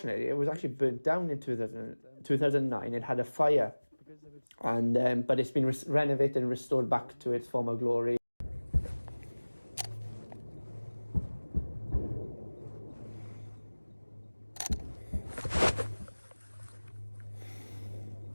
it was actually burnt down in 2009. It had a fire, and but it's been renovated and restored back to its former glory.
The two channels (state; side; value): inverted; both; correlation -1.00